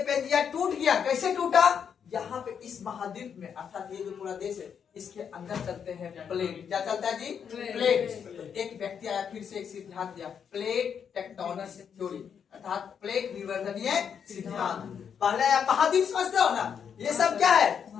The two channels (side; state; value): right; quieter; 7.5 dB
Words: पेंजिया टूट गया, कैसे टूटा? यहाँ पे इस महाद्वीप में, अर्थात ये जो पूरा देश है, इसके अंदर चलते हैं प्लेट। क्या चलता है जी? प्लेट। तो एक व्यक्ति आया फिर से एक सिद्धांत दिया, प्लेट टेक्टोनिक थ्योरी, अर्थात प्लेट विवर्तनीय सिद्धांत। पहले आप महाद्वीप समझते हो ना? ये सब क्या है?